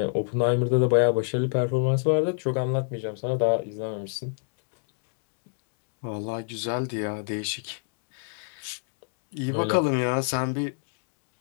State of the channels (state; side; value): silent; right; digital silence